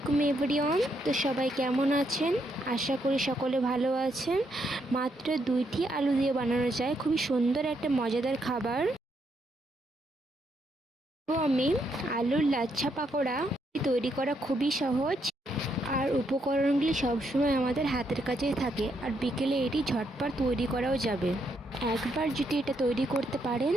এভরিওয়ান। তো সবাই কেমন আছেন? আশা করি সকলে ভালো আছেন। মাত্র 2টি আলু দিয়ে বানানো যায় খুবই সুন্দর একটা মজাদার খাবার। তো আমি আলুর লাচ্ছা পাকোড়া তৈরি করা খুবই সহজ, আর উপকরণগুলি সবসময় আমাদের হাতের কাছেই থাকে, আর বিকেলে এটি ঝটপট তৈরি করাও যাবে। একবার যদি এটা তৈরি করতে পারেন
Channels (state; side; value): normal; both; correlation 0.76